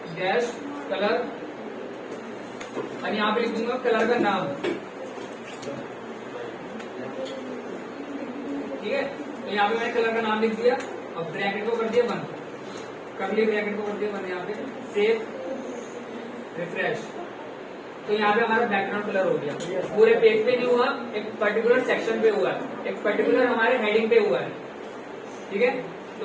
डैश कलर, और यहाँ पे लिख दूंगा कलर का नाम, ठीक है। तो यहाँ पे मैंने कलर का नाम लिख दिया, अब ब्रैकेट को कर दिया बंद, कर्ली ब्रैकेट को कर दिया बंद, यहाँ पे सेव रिफ्रेश। तो यहाँ पे हमारा बैकग्राउंड कलर हो गया। पूरे पेज पे नहीं हुआ, एक पर्टिकुलर सेक्शन पे हुआ है, एक पर्टिकुलर हमारे हेडिंग पे हुआ है। ठीक है,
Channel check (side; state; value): both; identical; correlation 1.00